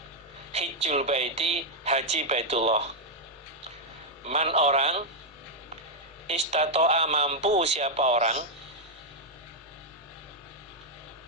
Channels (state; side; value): normal; both; correlation -0.02